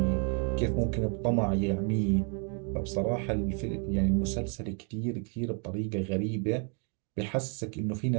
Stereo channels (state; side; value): quieter; left; 39.8 dB